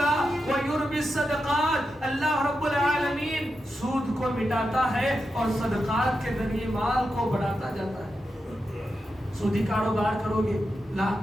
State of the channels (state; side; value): normal; both; correlation 0.88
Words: ویربی الصدقات، اللہ رب العالمین سود کو مٹاتا ہے اور صدقات کے ذریعے مال کو بڑھاتا جاتا ہے۔ سودی کاروبار کرو گے،